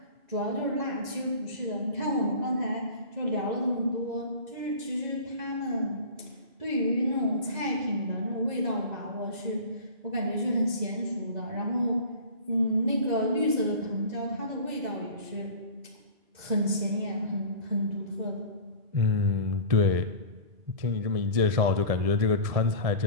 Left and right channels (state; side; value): late; left; 2.0 ms